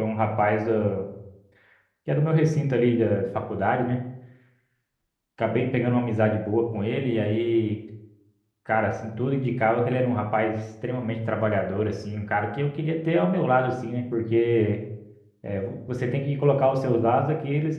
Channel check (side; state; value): both; identical; correlation 1.00